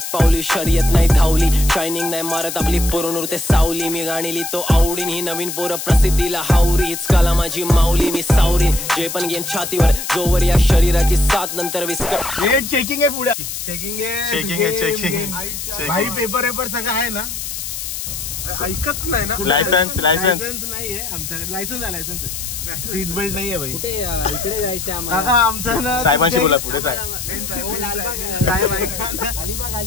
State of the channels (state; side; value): noise; left; hiss, 6 dB below the sound